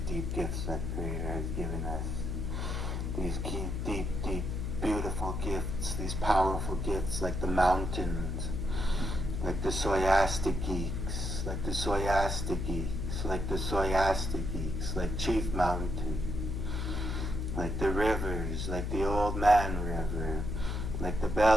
deep gifts that Creator has given us. These deep, beautiful gifts, these powerful gifts like the mountains, like the Soyastic geeks, like the Soyastic geeks, like the Soyastic geeks, like Chief Mountain, like the rivers, like the Old Man River, like the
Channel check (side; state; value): left; noise; hum, 2 dB below the sound